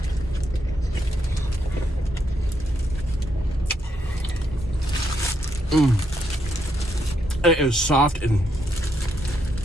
It is soft and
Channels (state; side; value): normal; both; correlation 0.79